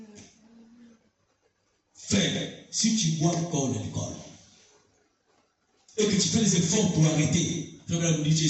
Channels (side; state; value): both; identical; correlation 1.00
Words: Frère, si tu bois encore l'alcool et que tu fais des efforts pour arrêter, frère, madame, tu es